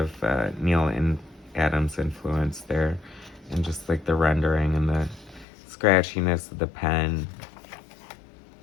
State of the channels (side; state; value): right; drops out; at 5.5 s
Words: Neil and Adams influence there, and just like the rendering and the scratchiness of the pen.